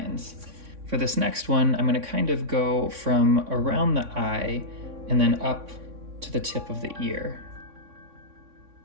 For this next one, I'm going to kind of go from around the eye and then up to the tip of the ear.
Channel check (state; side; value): late; left; 3.6 ms